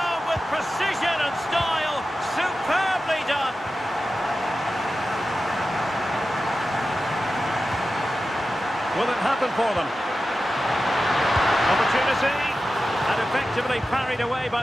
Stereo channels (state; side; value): normal; both; correlation 0.93